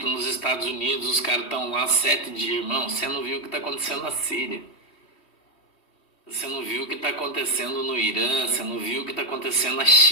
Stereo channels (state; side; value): late; right; 3.1 ms